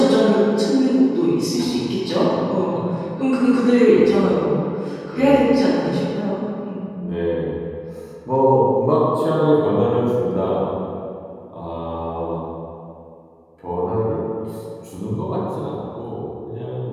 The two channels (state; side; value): identical; both; correlation 1.00